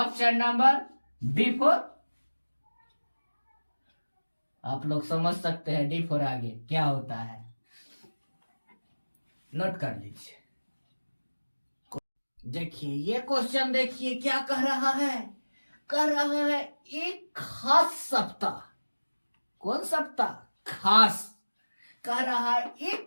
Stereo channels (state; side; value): inverted; both; correlation -1.00